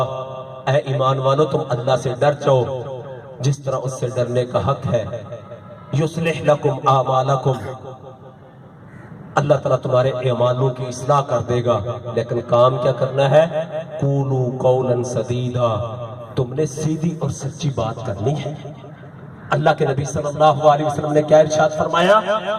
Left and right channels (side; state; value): both; identical; correlation 1.00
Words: اے ایمان والو تم اللہ سے ڈر جاؤ جس طرح اس سے ڈرنے کا حق ہے، یصلح لکم اعمالکم، اللہ تعالیٰ تمہارے اعمالوں کی اصلاح کر دے گا، لیکن کام کیا کرنا ہے؟ قولوا قولا سدیدا، تم نے سیدھی اور سچی بات کرنی ہے۔ اللہ کے نبی صلی اللہ علیہ وسلم نے کیا ارشاد فرمایا؟